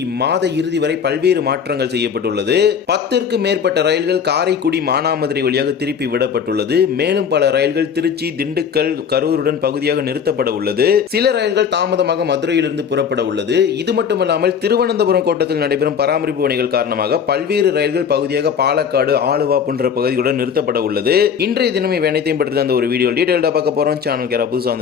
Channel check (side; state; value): right; quieter; 7.2 dB